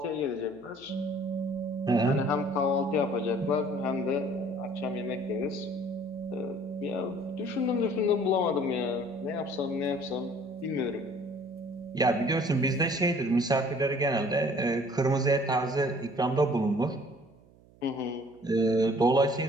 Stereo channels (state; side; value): noise; right; hum, 27 dB below the sound